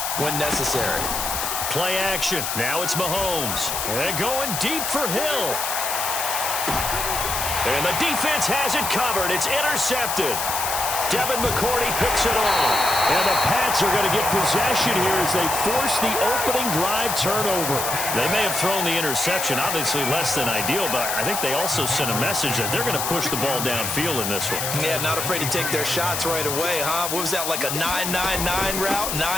when necessary. Play action. Now it's Mahomes. And going deep for Hill. And the defense has it covered. It's intercepted. Devin McCourty picks it off. And the Pats are going to get possession here as they force the opening drive turnover. They may have thrown the interception, obviously less than ideal, but I think they also sent a message that they're going to push the ball downfield in this one. Yeah, not afraid to take their shots right away, huh? What was that, like a 9-9-9 route?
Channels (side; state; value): left; noise; hiss, 2 dB below the sound